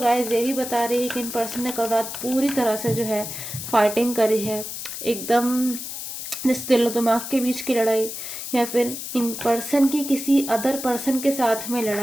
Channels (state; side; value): noise; left; hiss, 7 dB below the sound